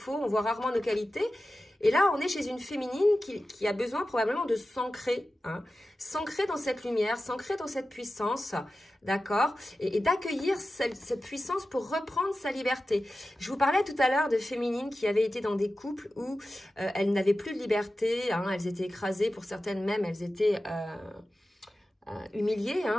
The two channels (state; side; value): normal; both; correlation 0.94